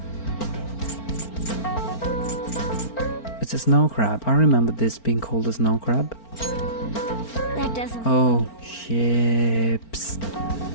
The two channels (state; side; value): late; right; 4.4 ms